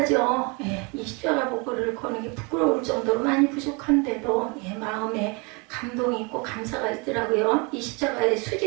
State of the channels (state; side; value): quieter; left; 30.5 dB